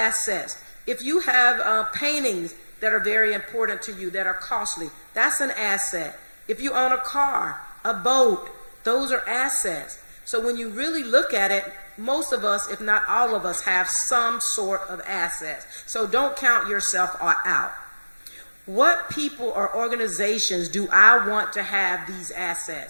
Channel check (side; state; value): both; inverted; correlation -1.00